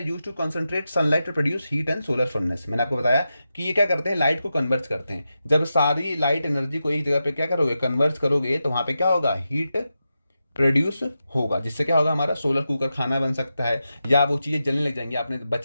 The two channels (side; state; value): both; inverted; correlation -0.89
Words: used to concentrate sunlight to produce heat and solar furnace, मैंने आपको बताया कि ये क्या करते हैं, लाइट को कन्वर्ज करते हैं, जब सारी लाइट एनर्जी को एक जगह पे क्या करोगे, कन्वर्ज करोगे, तो वहां पे क्या होगा, हीट प्रोड्यूस होगा, जिससे क्या होगा, हमारा सोलर कुकर खाना बन सकता है, या वो चीज़ें जलने लग जाएंगी, आपने